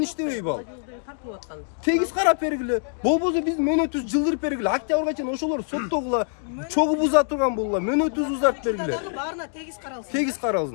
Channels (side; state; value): right; silent; 62 dB below the other